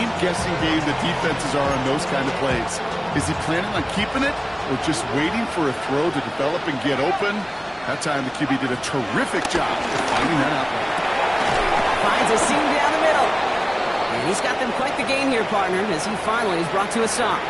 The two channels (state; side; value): identical; both; correlation 1.00